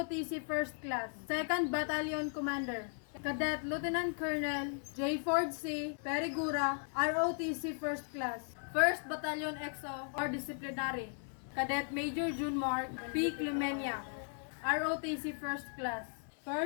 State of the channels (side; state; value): right; silent; 53 dB below the other